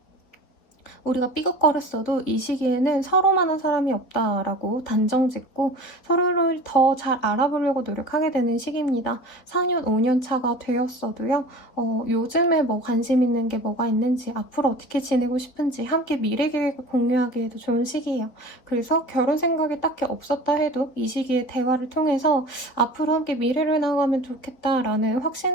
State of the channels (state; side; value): late; right; 4.2 ms